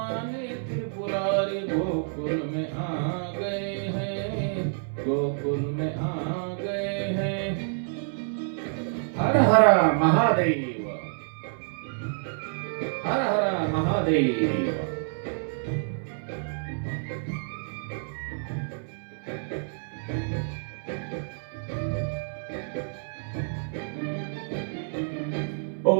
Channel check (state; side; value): silent; left; 59 dB below the other